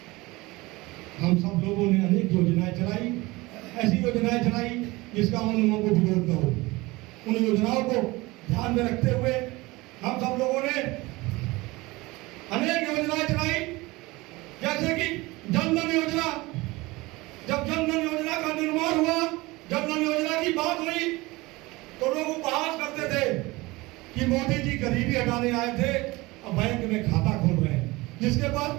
हम सब लोगों ने अनेक योजनाएं चलाई, ऐसी योजनाएं चलाई जिसका उन लोगों को विरोध न हो। उन योजनाओं को ध्यान में रखते हुए हम सब लोगों ने अनेक योजनाएं चलाई, जैसे कि जनधन योजना। जब जनधन योजना का निर्माण हुआ, जनधन योजना की बात हुई, तो लोग उपहास करते थे कि मोदी जी गरीबी हटाने आए थे और बैंक में खाता खोल रहे हैं, जिसके पास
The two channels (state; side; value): quieter; left; 21.7 dB